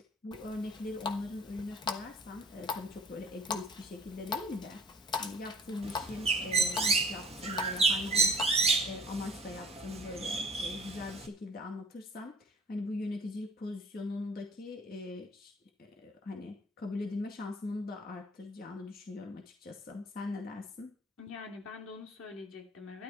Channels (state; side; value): normal; both; correlation 0.47